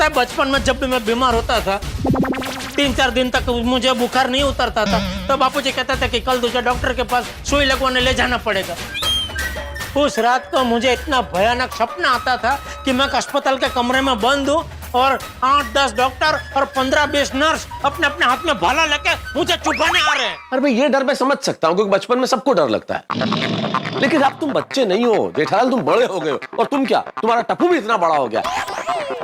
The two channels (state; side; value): identical; both; correlation 1.00